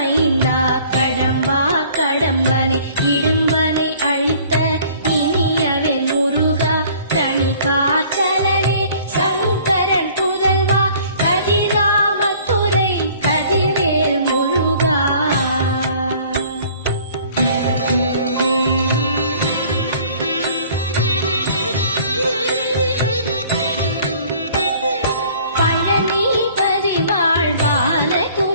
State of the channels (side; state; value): both; inverted; correlation -0.53